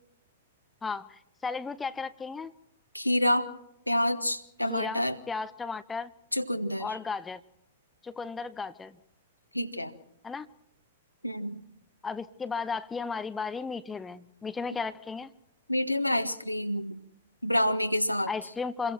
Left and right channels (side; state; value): both; inverted; correlation -0.52